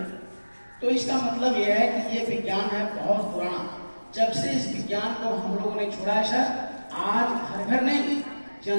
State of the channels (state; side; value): inverted; both; correlation -1.00